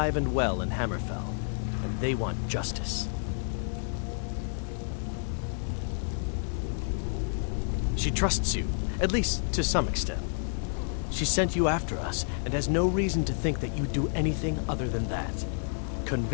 and well in Hammerfell, and they want justice. She trusts you, at least to some extent. She sent you after us, and has no reason to think that you'd do anything other than that.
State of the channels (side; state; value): right; silent; digital silence